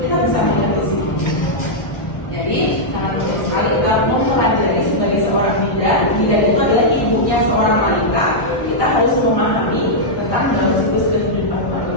bisa melihat di sini. Jadi sangat penting sekali kita mempelajari sebagai seorang bidan. Bidan itu adalah ibunya seorang wanita. Kita harus memahami tentang dalam siklus kehidupan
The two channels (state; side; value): late; right; 1.6 ms